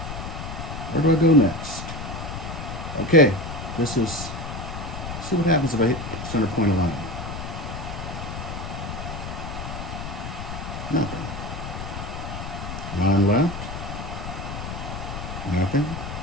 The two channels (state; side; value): noise; left; rumble, 7 dB below the sound